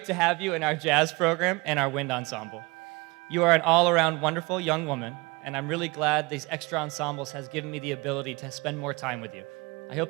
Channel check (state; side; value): quieter; left; 25.1 dB